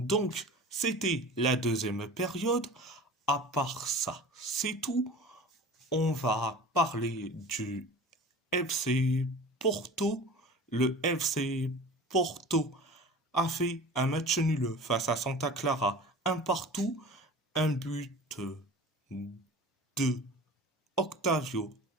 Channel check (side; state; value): both; normal; correlation 0.38